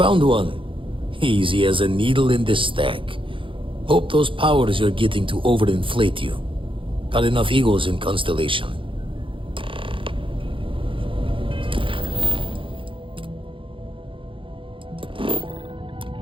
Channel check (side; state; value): left; late; 0.25 ms